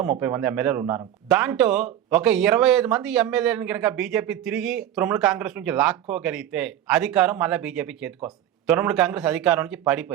30 మంది ఎమ్మెల్యేలు ఉన్నారు. దాంట్లో ఒక 25 మంది ఎమ్మెల్యేలను కనుక బీజేపీ తిరిగి తృణమూల్ కాంగ్రెస్ నుంచి లాక్కోగలిగితే అధికారం మళ్ళీ బీజేపీ చేతికి వస్తుంది. తృణమూల్ కాంగ్రెస్ అధికారం నుంచి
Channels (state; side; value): quieter; left; 11.5 dB